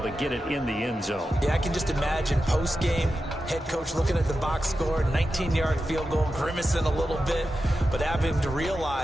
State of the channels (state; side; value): normal; both; correlation 0.91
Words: to get it in the end zone. Yeah, I can just imagine post-game, head coach looking at the box score, 19-yard field goal, grimacing a little bit, but having to